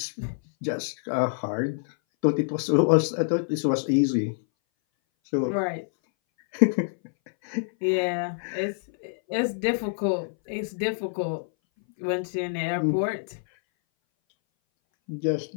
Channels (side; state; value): right; silent; 59 dB below the other